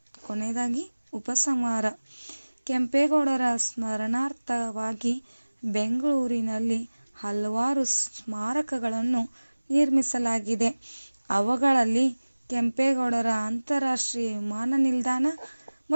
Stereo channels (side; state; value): both; inverted; correlation -1.00